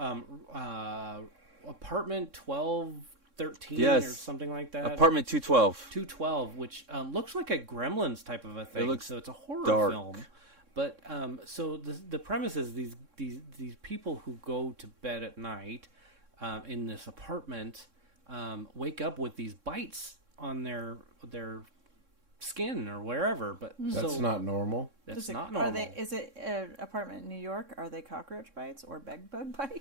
Apartment 1213 Yes. or something like that. Apartment 212. 212, which looks like a Gremlins type of a thing. looks So it's a horror dark. film. But so the premise is these people who go to bed at night in this apartment wake up with these bites on their skin or wherever. But That's so not normal. that's Is it- not normal. Is it an apartment in New York? Are they cockroach bites or bed bug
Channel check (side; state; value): left; late; 3.6 ms